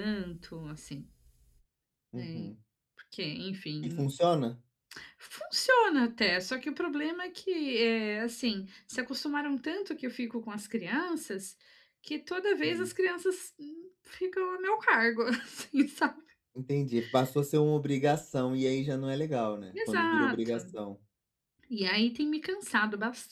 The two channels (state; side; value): identical; both; correlation 1.00